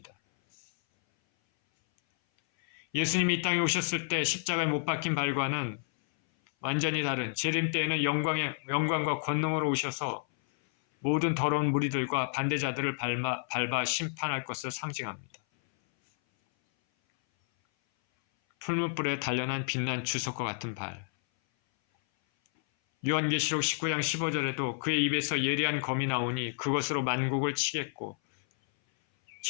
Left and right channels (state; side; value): silent; right; 57 dB below the other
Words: 예수님이 이 땅에 오셨을 때 십자가에 못 박힌 발과는 완전히 다른 재림 때에는 영광과 권능으로 오셔서 모든 더러운 무리들과 반대자들을 밟아 심판할 것을 상징합니다. 풀무불에 단련한 빛난 주석과 같은 발. 요한계시록 19장 15절에도 그의 입에서 예리한 검이 나오니 그것으로 만국을 치겠고